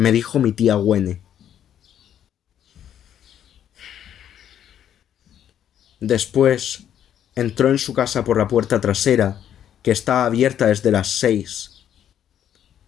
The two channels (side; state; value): right; quieter; 10.0 dB